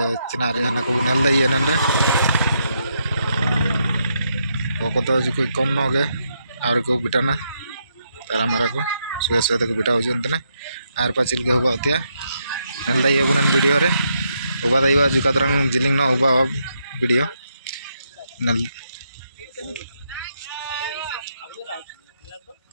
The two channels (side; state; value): both; inverted; correlation -0.79